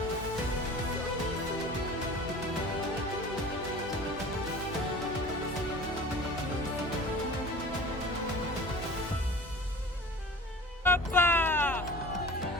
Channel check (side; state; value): both; normal; correlation 0.40